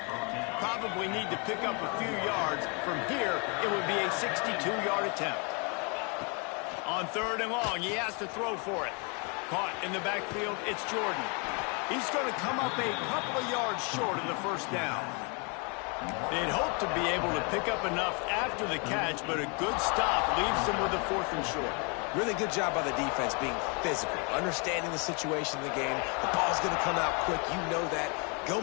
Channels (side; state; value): right; quieter; 34.3 dB